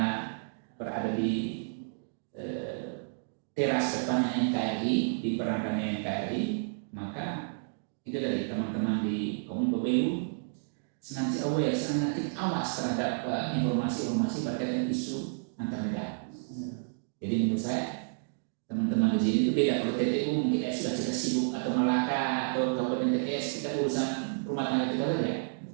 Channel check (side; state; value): left; silent; digital silence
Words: berada di teras depannya NKRI, di berangkatnya NKRI, maka itu dari teman-teman di Kominfo BU senantiasa aware, senantiasa awas terhadap informasi-informasi berkaitan isu antar negara. Jadi menurut saya teman-teman di sini itu beda. Kalau TTU mungkin sudah kita sibuk atau Malaka atau Kabupaten TTS kita urusan rumah tangga kita saja.